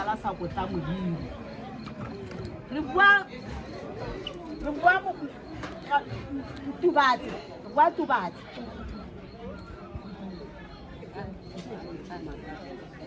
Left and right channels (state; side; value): identical; both; correlation 1.00